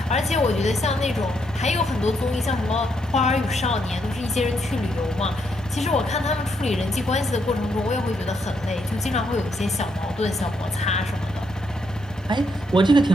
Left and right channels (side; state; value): both; normal; correlation 0.76